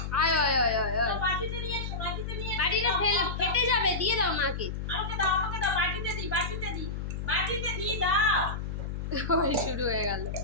আয় আয় আয় আয় আয়। বাটিতে নিয়ে এসো, বাটিতে নিয়ে এসো। বাটিটা ফেটে যাবে, দিয়ে দাও মাকে। আমাকে দাও, আমাকে দাও, বাটিতে দি, বাটিতে দি, বাটিতে দি দাও। ওই শুরু হয়ে গেল।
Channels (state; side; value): noise; left; hum, 5 dB below the sound